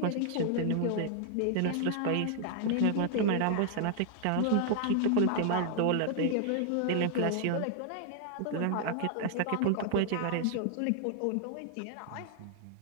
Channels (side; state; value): both; different; correlation 0.00